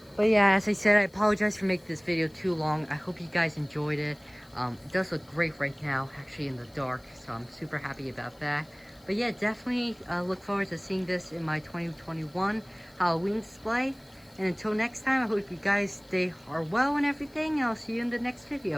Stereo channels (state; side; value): noise; left; hiss, 30 dB below the sound